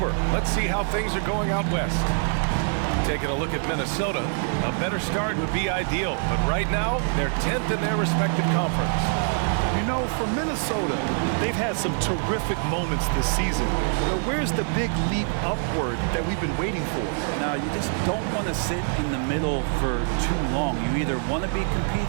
Let's see how things are going out west. Taking a look at Minnesota, a better start would be ideal, but right now, they're 10th in their respective conference. You know, for Minnesota, they've had some terrific moments this season. But where's the big leap upward that we've been waiting for? Now, you just don't want to sit in the middle for too long. You either want to be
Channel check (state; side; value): silent; left; 62 dB below the other